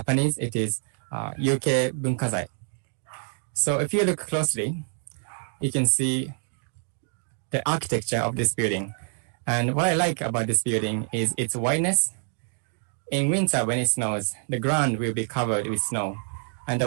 it is Yuke Bunkazai. So if you look closely, you can see the architecture of this building. And what I like about this building is its whiteness. In winter, when it snows, the ground will be covered with snow. And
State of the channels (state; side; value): silent; left; 61 dB below the other